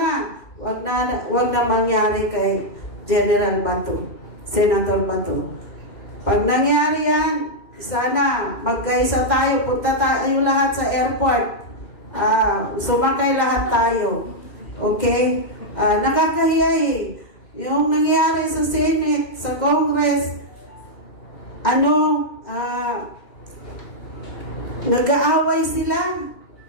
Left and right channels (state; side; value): late; right; 2.1 ms